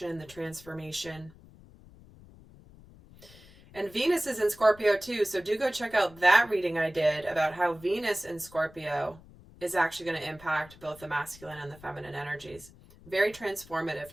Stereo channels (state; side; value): noise; left; rumble, 22 dB below the sound